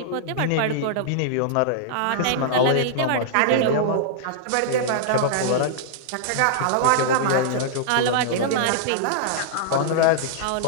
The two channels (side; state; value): both; different; correlation -0.02